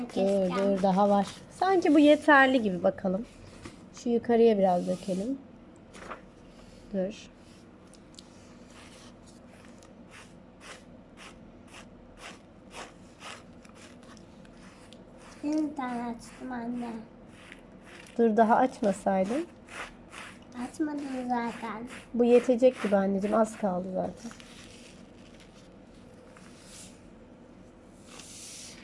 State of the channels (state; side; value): identical; both; correlation 1.00